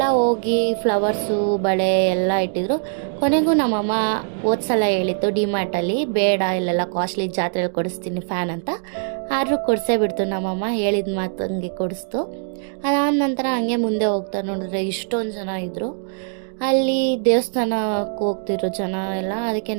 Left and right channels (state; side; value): silent; left; digital silence